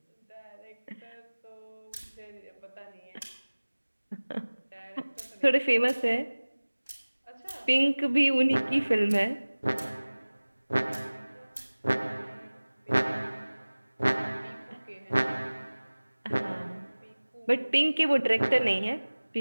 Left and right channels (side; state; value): both; inverted; correlation -1.00